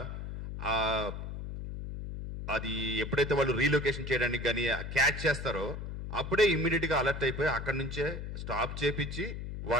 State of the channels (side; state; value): left; noise; hum, 7 dB below the sound